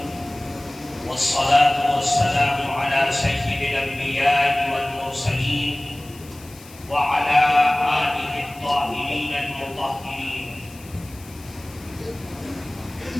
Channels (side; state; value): left; noise; hiss, 21 dB below the sound